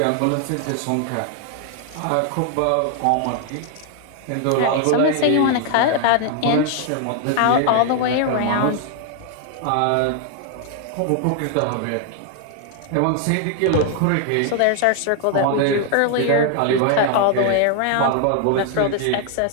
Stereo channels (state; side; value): different; both; correlation 0.00